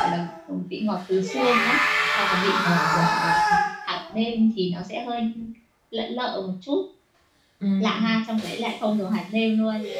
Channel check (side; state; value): both; identical; correlation 1.00